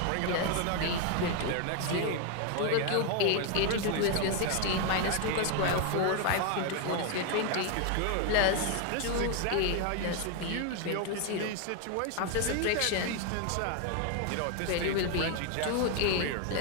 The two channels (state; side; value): different; both; correlation 0.00